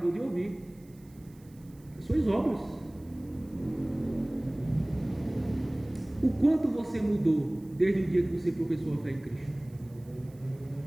de ouvir. As suas obras. O quanto você mudou desde o dia que você professou a fé em Cristo?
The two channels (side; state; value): right; noise; hiss, 29 dB below the sound